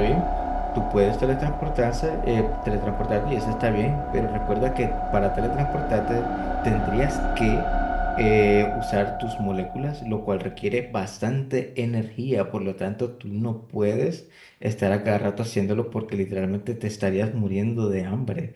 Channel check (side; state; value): both; identical; correlation 1.00